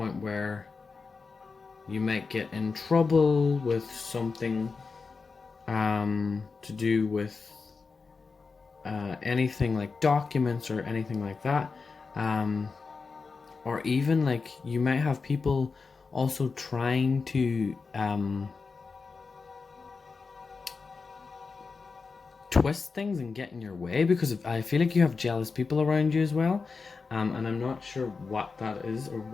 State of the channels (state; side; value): quieter; right; 4.6 dB